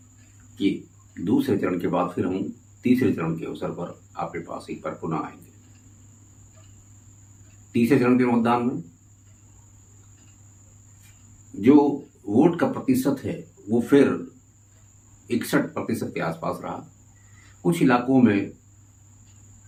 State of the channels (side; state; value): both; identical; correlation 1.00